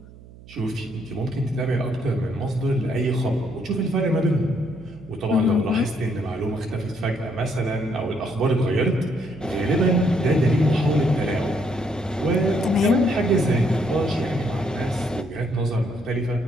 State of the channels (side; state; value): right; noise; hum, 20 dB below the sound